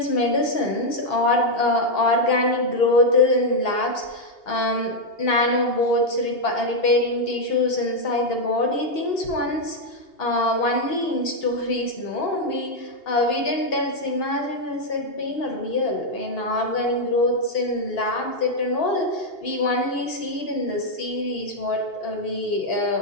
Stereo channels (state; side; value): late; right; 2.8 ms